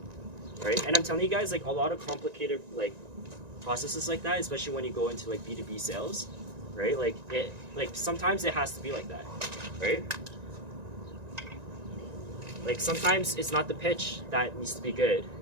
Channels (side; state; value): left; late; 1.9 ms